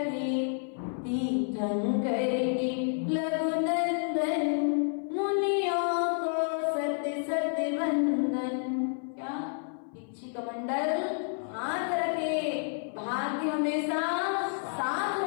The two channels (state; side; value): silent; right; 58 dB below the other